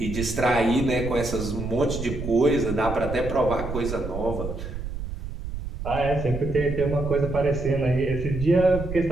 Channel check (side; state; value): right; noise; rumble, 7 dB below the sound